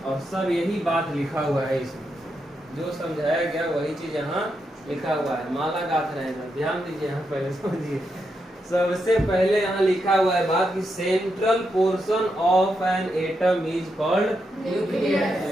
और सब यही बात लिखा हुआ है इसमें, जो समझाया गया वही चीज यहाँ लिखा हुआ है। माला गाथ रहे हैं, ध्यान दीजिए यहाँ पहले समझिए। सबसे पहले यहाँ लिखा हुआ है बात कि central portion of an atom is called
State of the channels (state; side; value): normal; both; correlation 0.83